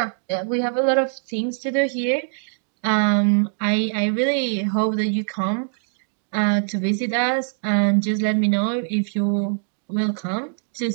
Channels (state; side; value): silent; left; digital silence